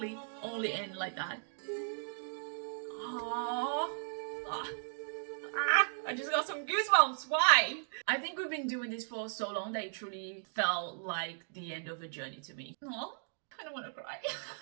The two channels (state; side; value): silent; left; digital silence